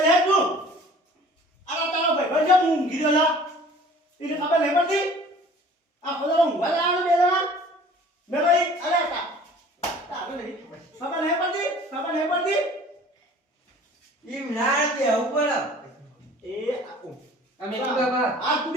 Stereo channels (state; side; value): normal; both; correlation 0.48